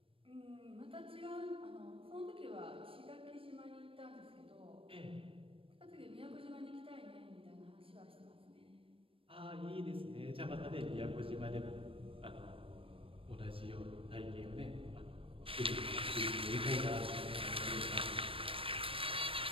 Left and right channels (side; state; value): left; late; 0.26 ms